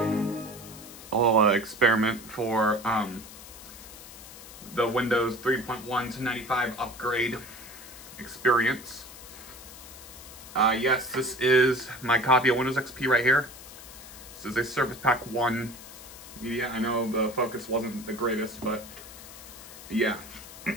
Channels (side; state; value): left; noise; hiss, 16 dB below the sound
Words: experiment for the Windows 3.1 to 95 upgrade experience. Yes, this is my copy of Windows XP right here. This is a Surface Pack 1 media. I know the focus wasn't the greatest, but yeah.